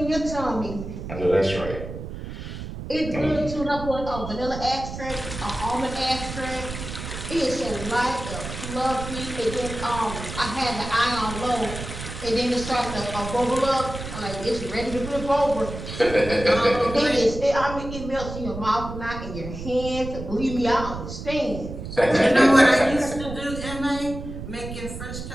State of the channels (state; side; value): noise; right; rumble, 9 dB below the sound